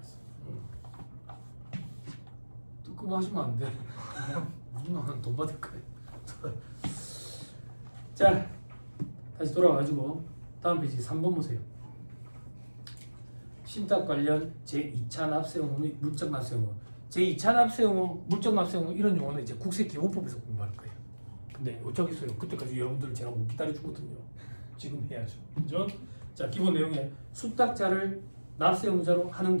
뜨끔하시면 안 돼. 누나는 돈 받을 거야. 자, 다시 돌아와가지고 다음 페이지 3번 보세요. 신탁 관련 제2차 납세 의무 및 물적 납세 의무. 제2차 납세 의무, 물적 납세 의무 이런 용어는 이제 국세기본법에서 공부할 거예요. 근데 어쩌겠어요 그때까지 여러분들 제가 못 기다려주거든요. 지금 해야죠. 그죠? 자, 기본 내용에 수탁자를 납세 의무자로 하는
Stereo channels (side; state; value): both; inverted; correlation -1.00